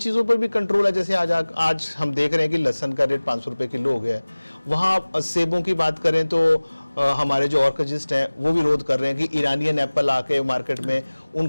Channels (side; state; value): both; inverted; correlation -1.00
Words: पर भी कंट्रोल है। जैसे आज हम देख रहे हैं कि लहसन का रेट 500 रुपये किलो हो गया है। वहाँ सेबों की बात करें तो हमारे जो ऑर्किजिस्ट हैं वो विरोध कर रहे हैं कि ईरानियन एप्पल आके मार्केट में